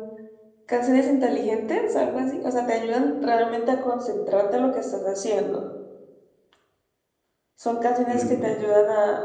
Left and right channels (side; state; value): both; identical; correlation 1.00